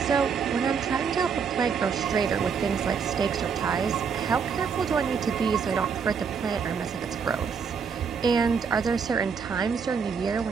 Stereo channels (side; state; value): left; quieter; 6.2 dB